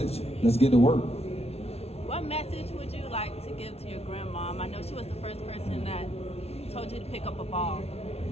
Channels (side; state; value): right; late; 0.30 ms